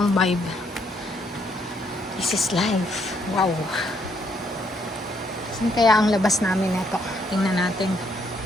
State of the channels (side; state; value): both; normal; correlation 0.72